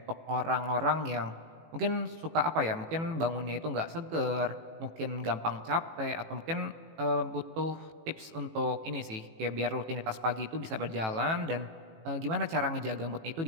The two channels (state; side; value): late; left; 18 ms